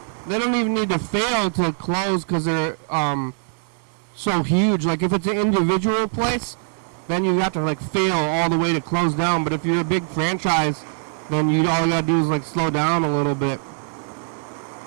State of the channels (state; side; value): silent; left; digital silence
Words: don't even need to fail to close because they're so huge. Like if it's an individual place, then you have to fail all the way to close down. But if you're a big franchise, then all you gotta do is slow down a little bit,